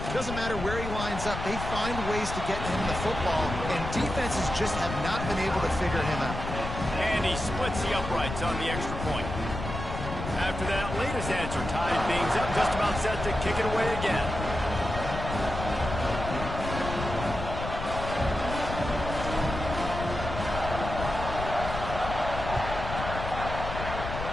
Doesn't matter where he lines up, they find ways to get him the football, and defenses just have not been able to figure him out. And he splits the uprights on the extra point. After that latest answer tied things up, just about set to kick it away again.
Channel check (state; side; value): noise; left; rumble, 6 dB below the sound